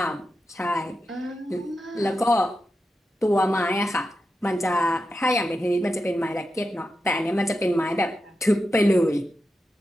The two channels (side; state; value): both; normal; correlation 0.89